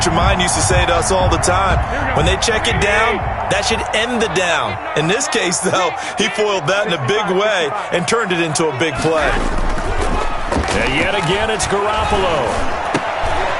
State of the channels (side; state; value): both; identical; correlation 1.00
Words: of mine used to say to us all the time, when they check it down, that should end the down. In this case, though, he foiled that in a big way and turned it into a big play. And yet again, it's Garoppolo.